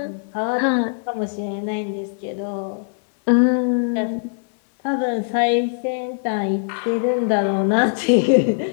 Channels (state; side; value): silent; right; 64 dB below the other